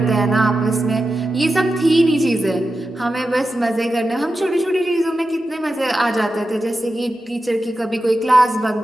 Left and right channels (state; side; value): normal; both; correlation 0.91